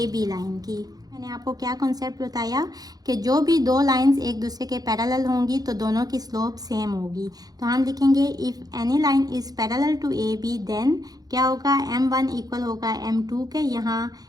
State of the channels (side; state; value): left; late; 0.19 ms